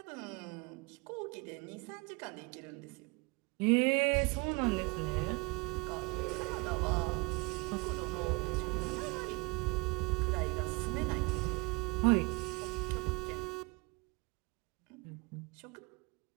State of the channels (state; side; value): quieter; left; 27.0 dB